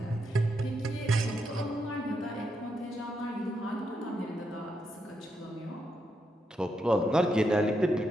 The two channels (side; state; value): both; normal; correlation 0.82